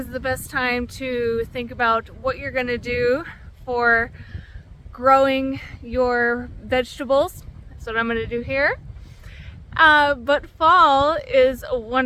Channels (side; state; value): both; identical; correlation 1.00